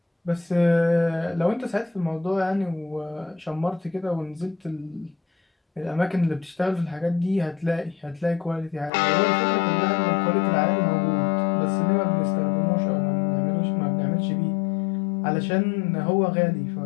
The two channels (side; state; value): right; drops out; at 8.9 s